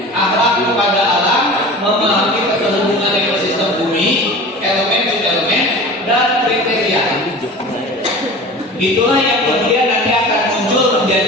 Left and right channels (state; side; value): normal; both; correlation 0.37